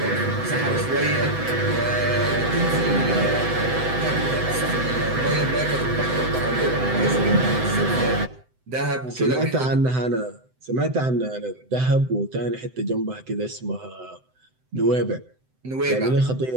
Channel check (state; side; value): late; left; 7.8 ms